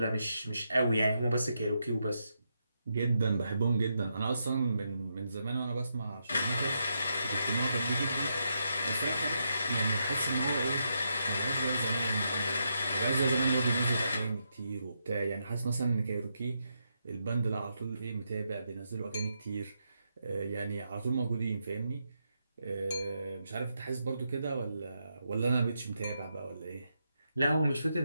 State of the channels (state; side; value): inverted; both; correlation -0.83